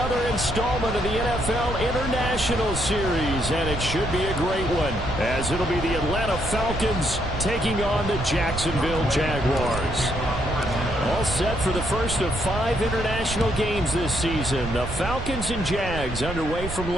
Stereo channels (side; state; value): right; noise; rumble, 7 dB below the sound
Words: installment of the NFL International Series, and it should be a great one, as it'll be the Atlanta Falcons taking on the Jacksonville Jaguars. All set for the first of 5 international games this season. The Falcons and Jags underway from